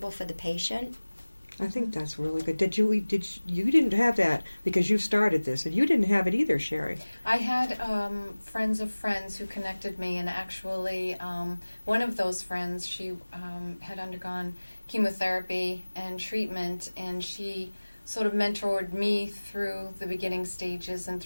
for the patient. I think that's really good. You didn't have that because you started this, and you didn't have it either, Sherry. I had friends of friends who connected me, and actually one of those friends, she had undergone chemotherapy and treatment, and she sort of mentored me through the beginning stages and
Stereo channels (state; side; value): inverted; both; correlation -1.00